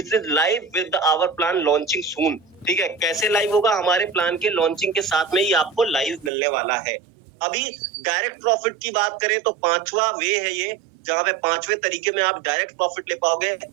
is live with our plan launching soon. ठीक है, कैसे लाइव होगा, हमारे प्लान के लॉन्चिंग के साथ में ही आपको लाइव मिलने वाला है। अभी डायरेक्ट प्रॉफिट की बात करें तो 5वां वे है ये, जहां पे 5वें तरीके में आप डायरेक्ट प्रॉफिट ले पाओगे,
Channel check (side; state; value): left; drops out; at 6.3 s